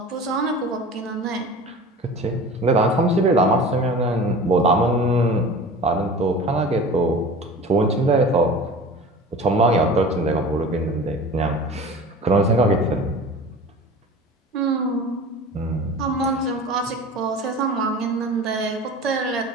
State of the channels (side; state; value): both; normal; correlation 0.38